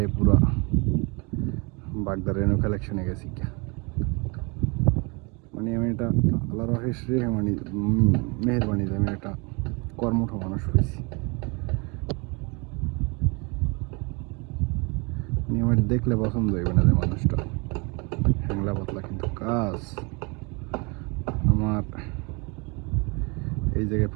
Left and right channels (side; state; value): left; quieter; 29.8 dB